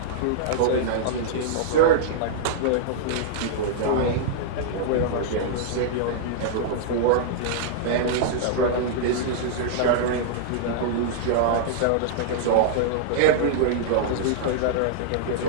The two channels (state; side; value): different; both; correlation -0.02